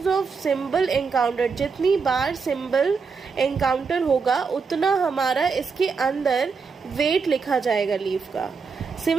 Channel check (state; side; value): quieter; left; 5.2 dB